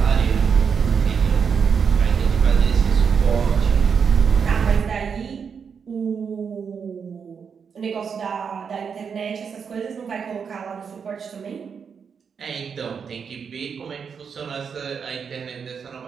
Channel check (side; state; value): left; quieter; 6.5 dB